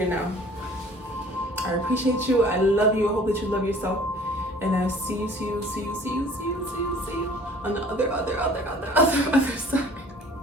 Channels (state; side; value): normal; both; correlation 0.50